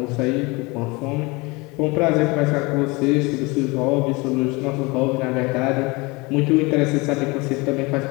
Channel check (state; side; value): quieter; right; 25.4 dB